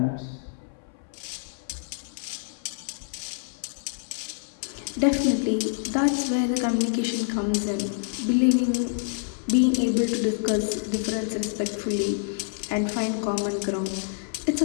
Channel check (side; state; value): right; silent; 57 dB below the other